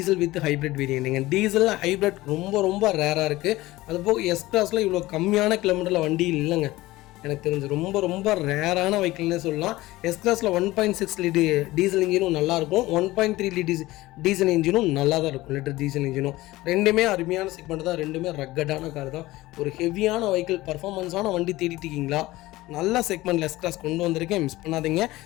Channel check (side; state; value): right; quieter; 18.3 dB